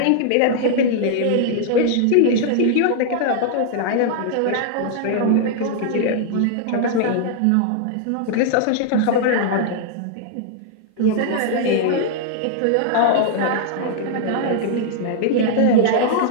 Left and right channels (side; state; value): both; different; correlation -0.01